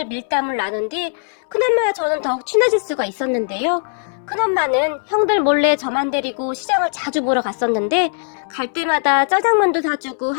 밀담을 나눈 뒤 큰엄마와 저는 더욱 친해질 수가 있었는데요. 큰엄마는 형들 몰래 저만 데리고 시장을 자주 보러 갔었는데 갈 때마다 짜장면도 사주고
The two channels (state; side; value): silent; right; 66 dB below the other